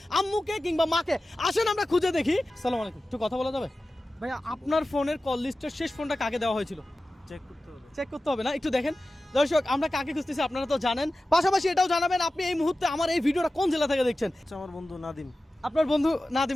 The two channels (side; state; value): both; normal; correlation 0.95